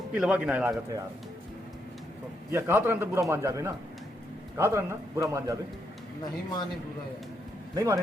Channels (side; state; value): both; normal; correlation 0.78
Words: पिलवा गिनाए लागत है यार। तो यह कहा तरह तो बुरा मान जावे ना, कहा तरह ना बुरा मान जावे। नहीं माने बुरा यार नहीं माने